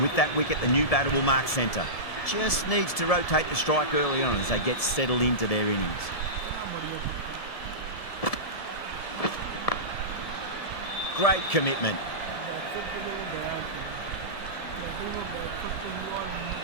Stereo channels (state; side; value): late; right; 1.7 ms